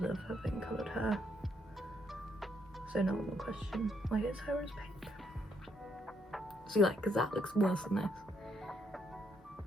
of having coloured hair. So no one will question why his hair is pink. See, like, because that looks worse than this.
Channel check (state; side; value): normal; both; correlation 0.73